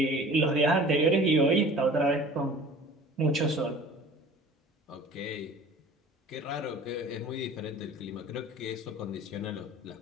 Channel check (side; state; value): both; normal; correlation 0.44